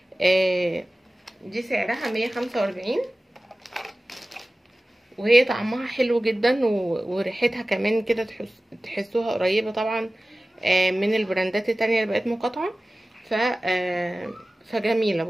دي سعرها 145، وهي طعمها حلو جدا وريحتها كمان كده تحسوها قريبه طبعا من البراندات التانية اللي بقت مقاطعه. ف فجميله.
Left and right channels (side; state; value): both; normal; correlation 0.97